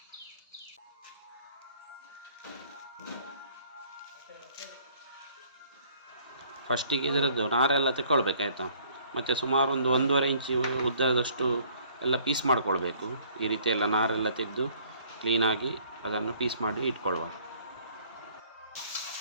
ಫಸ್ಟಿಗೆ ಇದರದ್ದು ನಾರೆಲ್ಲ ತೆಕ್ಕೊಳ್ಬೇಕಾಯ್ತಾ, ಮತ್ತು ಸುಮಾರು ಒಂದು 1.5 ಇಂಚು ಉದ್ದದಷ್ಟು ಎಲ್ಲ ಪೀಸ್ ಮಾಡ್ಕೊಳ್ಬೇಕು. ಈ ರೀತಿ ಎಲ್ಲ ನಾರೆಲ್ಲ ತೆಗೆದು ಕ್ಲೀನಾಗಿ ಅದನ್ನು ಪೀಸ್ ಮಾಡಿ ಇಟ್ಕೊಳ್ಳುವ.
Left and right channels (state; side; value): inverted; both; correlation -0.59